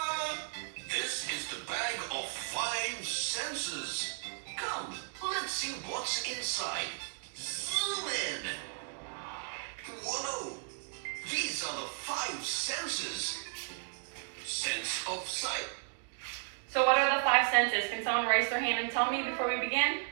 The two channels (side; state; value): left; silent; 55 dB below the other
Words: This is the bag of 5 senses. Come, let's see what's inside. Zoom in. Whoa! These are the 5 senses. Sense of sight. So what are the 5 senses? Can someone raise their hand and tell me before we begin?